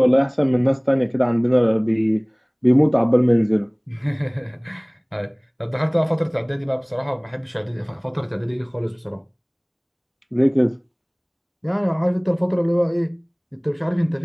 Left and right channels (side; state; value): both; identical; correlation 1.00